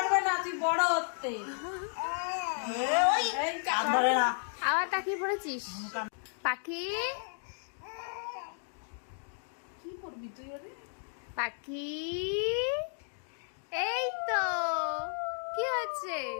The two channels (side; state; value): right; silent; digital silence